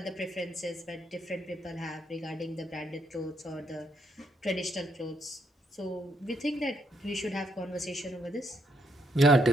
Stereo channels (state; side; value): normal; both; correlation 0.75